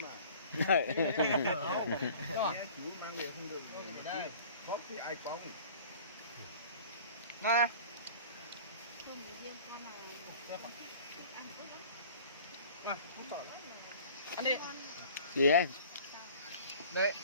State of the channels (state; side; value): inverted; both; correlation -0.46